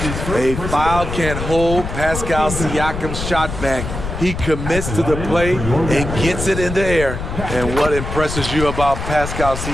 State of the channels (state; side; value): noise; left; rumble, 6 dB below the sound